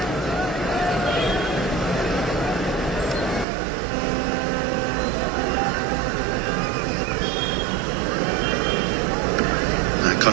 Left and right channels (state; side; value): drops out; left; at 3.5 s